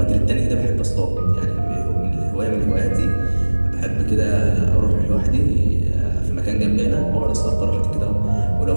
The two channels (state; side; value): inverted; both; correlation -1.00